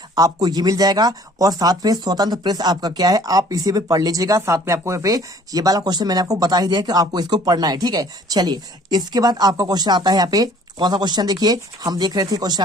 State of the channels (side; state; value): both; normal; correlation 0.54